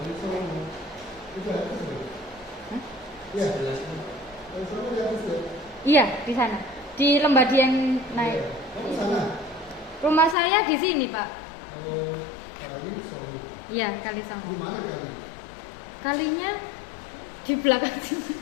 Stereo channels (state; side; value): drops out; right; at 10.4 s